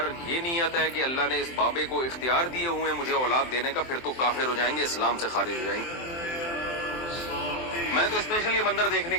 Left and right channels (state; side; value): late; right; 23 ms